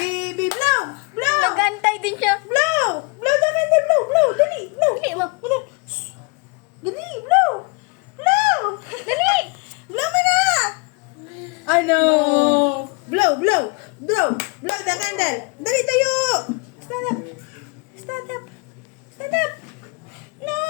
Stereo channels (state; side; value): quieter; right; 30.8 dB